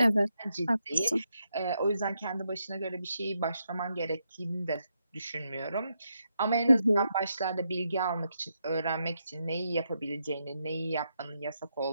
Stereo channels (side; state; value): both; inverted; correlation -0.82